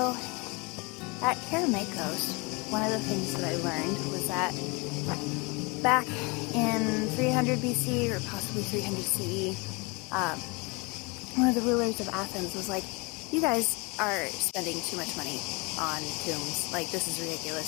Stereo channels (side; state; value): right; quieter; 28.6 dB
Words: at Kerameikos, one of the things that I learned was that back in 300 BC or possibly 300 CE, one of the rulers of Athens was like, you guys are spending too much money on tombs. Like, this is